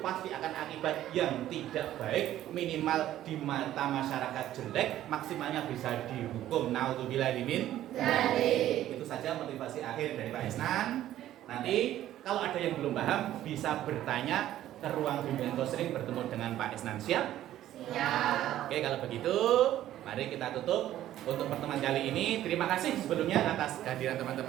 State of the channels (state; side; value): quieter; left; 13.0 dB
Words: pasti akan akibat yang tidak baik, minimal di mata masyarakat jelek, maksimalnya bisa dihukum. Naudzubillah min. Itu saja motivasi akhir dari Pak Isnan. Nanti kalau ada yang belum paham bisa bertanya ke ruang bimbingan konseling bertemu dengan Pak Isnan. Siap? Siap. Oke, kalau begitu mari kita tutup untuk pertemuan kali ini. Terima kasih sebelumnya atas kehadiran